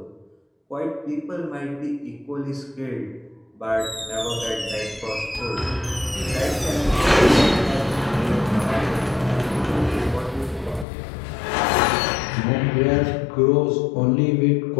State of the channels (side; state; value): right; drops out; at 10.9 s